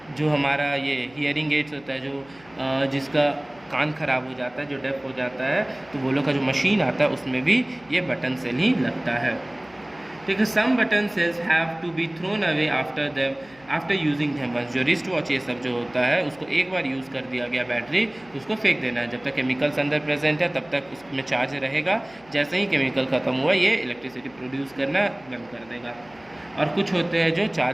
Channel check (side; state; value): left; noise; hum, 26 dB below the sound